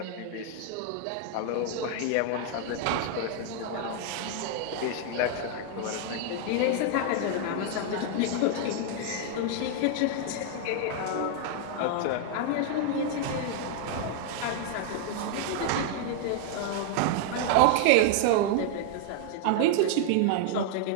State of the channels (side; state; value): both; different; correlation 0.00